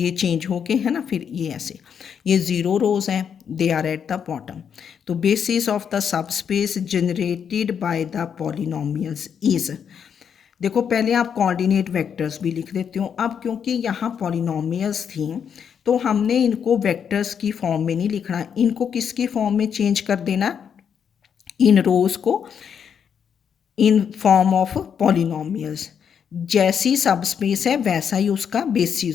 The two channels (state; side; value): quieter; right; 7.6 dB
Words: चेंज हो के है ना, फिर ये ऐसे, ये 0 रोज हैं, they are at the bottom. तो basis of the subspace generated by the polynomials is, देखो पहले आप कोऑर्डिनेट वेक्टर्स भी लिख देते हो। अब क्योंकि यहाँ पॉलिनोमियल्स थी तो हमने इनको वेक्टर्स की फॉर्म में नहीं लिखना, इनको किसकी फॉर्म में चेंज कर देना, इन रोज को इन फॉर्म ऑफ पॉलिनोमियल्स। जैसी सब स्पेस है वैसा ही उसका